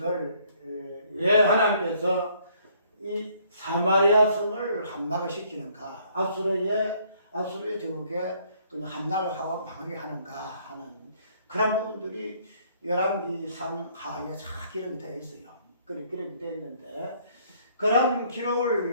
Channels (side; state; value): both; inverted; correlation -0.64